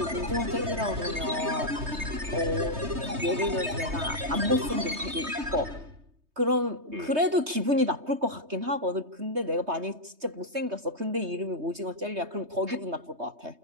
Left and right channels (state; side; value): late; left; 3.2 ms